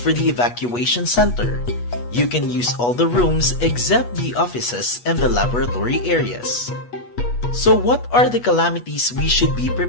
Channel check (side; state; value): right; late; 8.3 ms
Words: the evacuation center. You can use all the rooms except the offices and the laboratory areas. So what are the calamities we should be